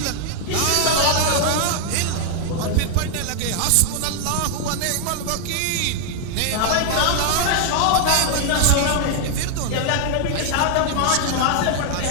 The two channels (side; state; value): both; different; correlation 0.00